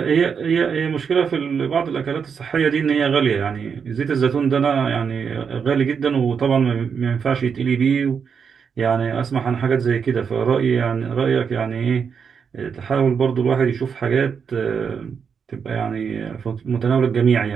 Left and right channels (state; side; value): quieter; left; 6.5 dB